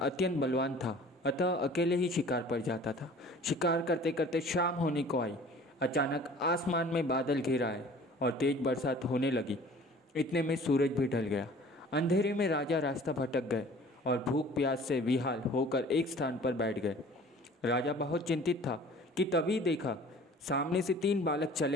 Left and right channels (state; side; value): normal; both; correlation 0.48